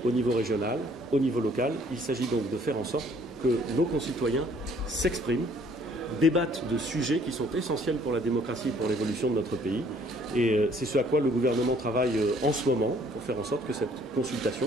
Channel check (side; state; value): both; normal; correlation 0.60